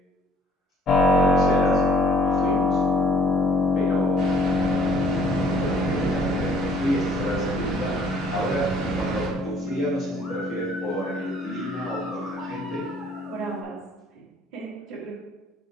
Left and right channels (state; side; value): normal; both; correlation 0.58